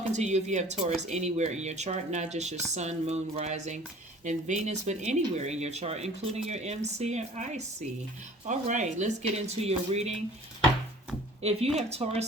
to you if you have Taurus anywhere in your chart, not just your Sun, Moon, Rising, and Venus, but anywhere in your chart, including your MC and IC. All right, let's get into your reading. If you have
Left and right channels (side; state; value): both; normal; correlation 0.49